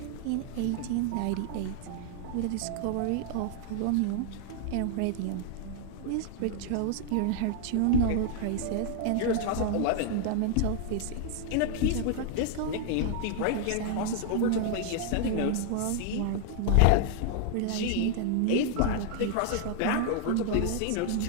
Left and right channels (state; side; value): different; both; correlation 0.00